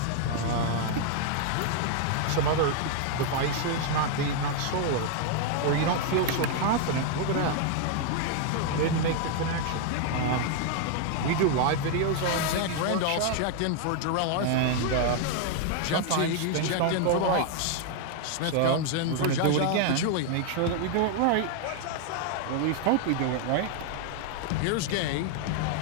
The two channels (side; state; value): both; different; correlation 0.00